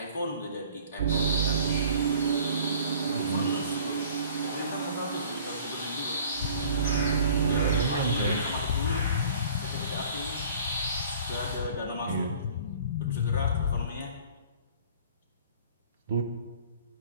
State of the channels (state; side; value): inverted; both; correlation -0.49